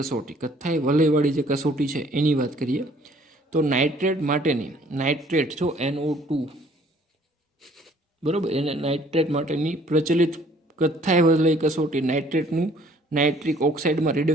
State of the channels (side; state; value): both; normal; correlation 0.58